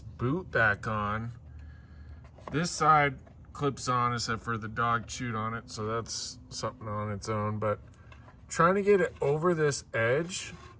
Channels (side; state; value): both; identical; correlation 1.00